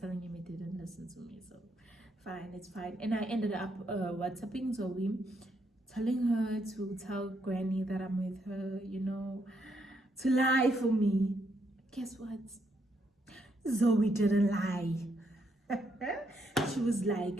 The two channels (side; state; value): both; normal; correlation 0.76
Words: him, he didn't listen to me. So fine, it's fine. And I ended up WhatsApping Zoe, telling her to tell Granny that I'm with her, you know, to lie for me. Guess what? Zoe didn't lie. She was